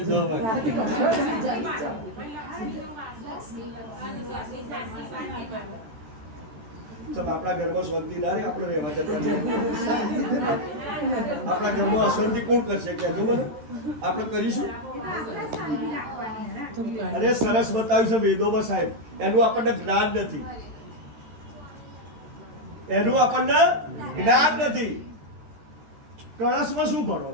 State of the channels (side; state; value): left; late; 13 ms